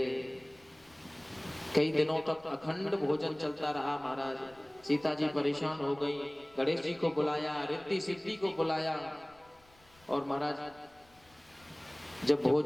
कई दिनों तक अखंड भोजन चलता रहा महाराज। सीता जी परेशान हो गई, गणेश जी को बुलाया, रिद्धि सिद्धि को बुलाया, और महाराज जब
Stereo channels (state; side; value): noise; left; rumble, 29 dB below the sound